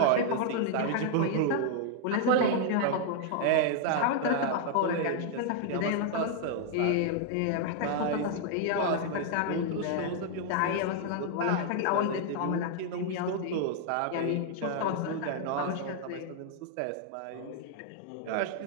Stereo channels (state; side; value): different; both; correlation 0.00